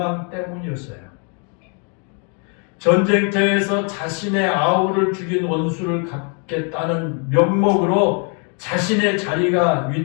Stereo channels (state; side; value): quieter; right; 38.5 dB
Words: 때문이었어요. 전쟁터에서 자신의 아우를 죽인 원수를 갚겠다는 명목으로 자신의 자리가